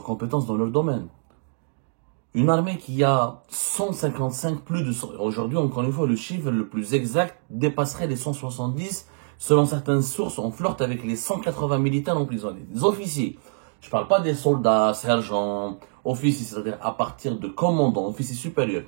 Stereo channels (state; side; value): silent; left; digital silence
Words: compétences dans leur domaine. Une armée qui a 155, plus de 100, aujourd'hui encore une fois le chiffre le plus exact dépasserait les 170, selon certaines sources on flirte avec les 180 militaires emprisonnés, des officiers. Je ne parle pas des soldats, sergents, officiers, c'est-à-dire à partir de commandants, officiers supérieurs,